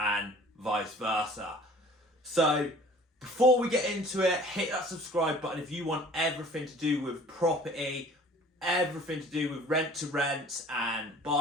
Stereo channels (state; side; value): normal; both; correlation 0.49